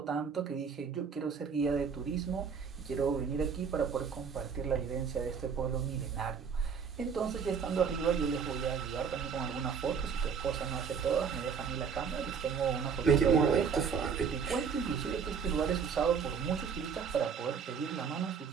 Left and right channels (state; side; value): quieter; left; 6.3 dB